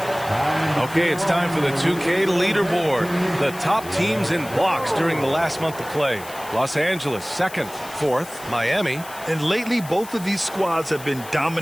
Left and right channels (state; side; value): noise; left; hiss, 16 dB below the sound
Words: Okay, it's time for the 2K leaderboard. The top teams in blocks during the last month of play. Los Angeles, 2nd, 4th, Miami. And lately, both of these squads have been